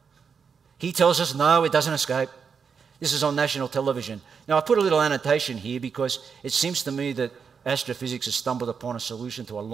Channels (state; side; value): quieter; left; 6.2 dB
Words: He tells us, no, it doesn't escape. This is on national television. Now, I put a little annotation here because it seems to me that astrophysics has stumbled upon a solution to a